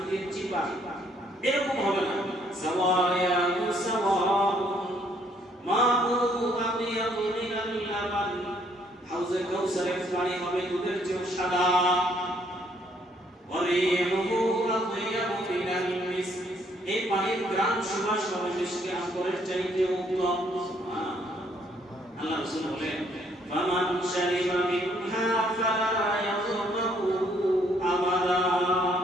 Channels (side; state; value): both; normal; correlation 0.67